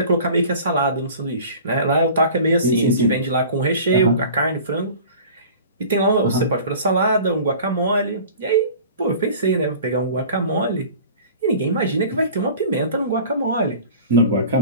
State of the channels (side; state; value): both; inverted; correlation -0.42